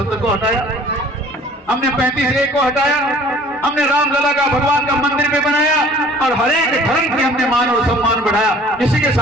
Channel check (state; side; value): normal; both; correlation 0.51